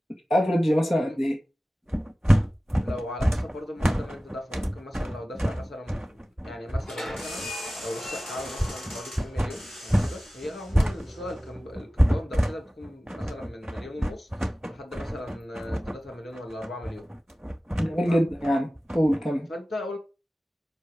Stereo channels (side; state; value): both; normal; correlation 0.96